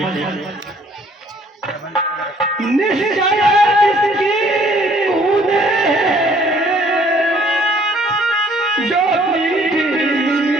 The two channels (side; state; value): both; normal; correlation 0.60